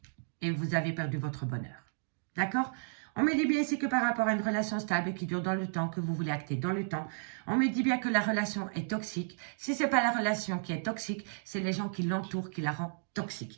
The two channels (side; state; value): left; silent; digital silence